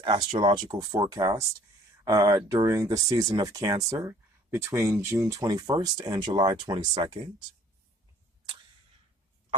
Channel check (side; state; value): both; normal; correlation 0.54